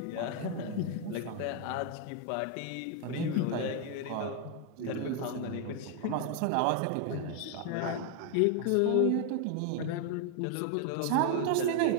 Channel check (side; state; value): both; different; correlation 0.01